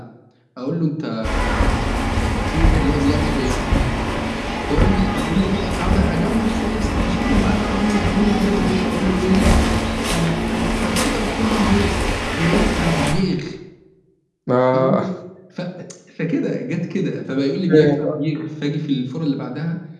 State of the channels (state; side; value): identical; both; correlation 1.00